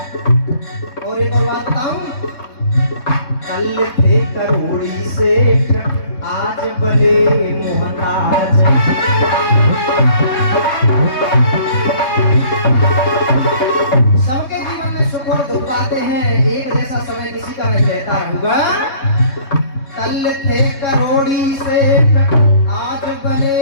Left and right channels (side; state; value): right; late; 3.7 ms